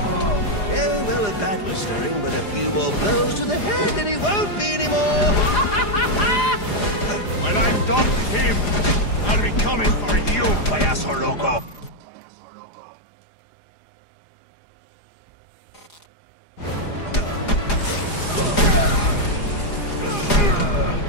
well, a bat was stirring, but a few more blows to the head and he won't be anymore. When I'm done with him, I'll be coming for you, payaso loco.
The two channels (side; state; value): right; late; 4.9 ms